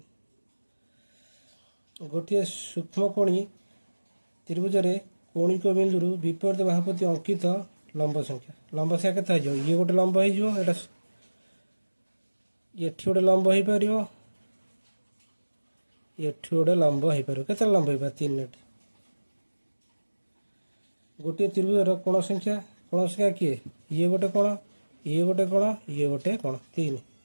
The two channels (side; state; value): both; inverted; correlation -1.00